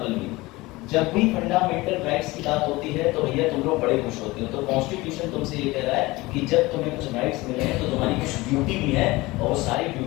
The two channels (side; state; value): right; quieter; 21.1 dB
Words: कल भी। जब भी फंडामेंटल राइट्स की बात होती है तो भैया तुम लोग बड़े खुश होते हो। तो कॉन्स्टिट्यूशन तुमसे ये कह रहा है कि जब तुम्हें कुछ राइट्स मिले हैं तो तुम्हारी कुछ ड्यूटी भी है और वो सारी